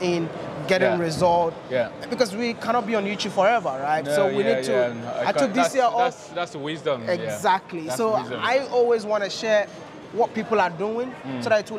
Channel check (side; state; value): both; identical; correlation 1.00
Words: in, getting results. Because we cannot be on YouTube forever, right? So we need to. I took this year off. That's wisdom. Exactly. So wisdom. I always want to share what people are doing so that it